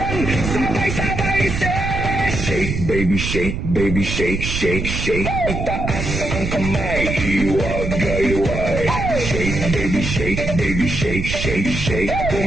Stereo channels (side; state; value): right; noise; rumble, 4 dB below the sound